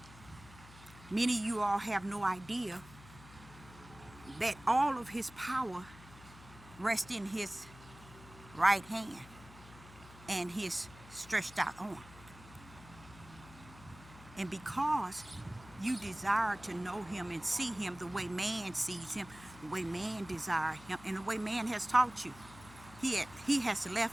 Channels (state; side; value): noise; left; hum, 19 dB below the sound